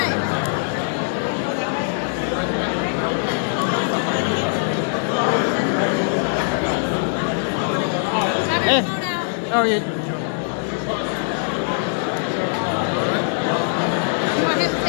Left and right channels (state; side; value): silent; right; digital silence